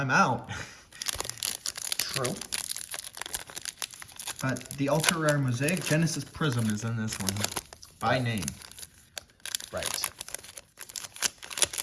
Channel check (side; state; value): both; identical; correlation 1.00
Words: out. True. But the ultra rare Mosaic Genesis Prism is in this one. By name. Right.